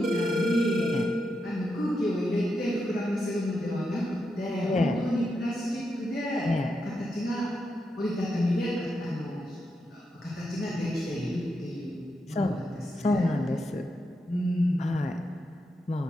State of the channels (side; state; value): both; normal; correlation 0.85